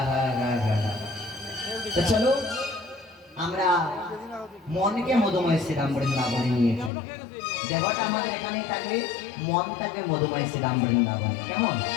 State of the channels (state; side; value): drops out; right; at 6.9 s